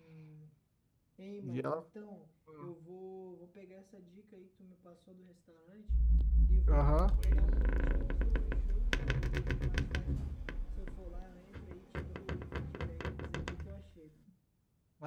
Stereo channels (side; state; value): both; identical; correlation 1.00